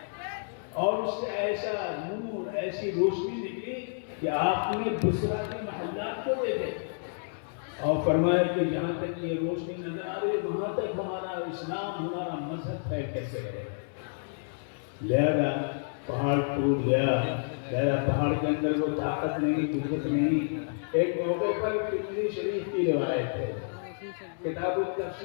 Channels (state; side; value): silent; right; 58 dB below the other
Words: اور اس سے ایسا نور، ایسی روشنی نکلی کہ آپ نے بصرہ کے محلات کو دیکھے اور فرمایا کہ جہاں تک یہ روشنی نظر آ رہی وہاں تک ہمارا اسلام، ہمارا مذہب پھیل کیسے رہے۔ لہذا پہاڑ ٹوٹ گیا، لہذا پہاڑ کے اندر وہ طاقت نہیں، قوت نہیں۔ ایک موقع پر ترمذی شریف کی روایت ہے، کتاب